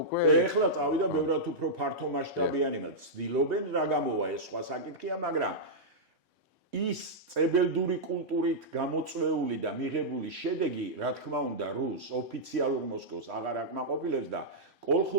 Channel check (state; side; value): normal; both; correlation -0.10